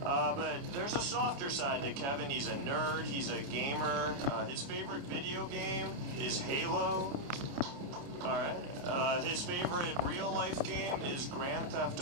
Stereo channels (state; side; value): late; left; 29 ms